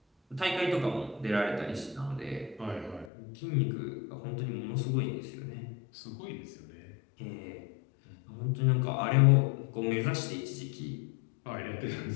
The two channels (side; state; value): right; drops out; at 3.1 s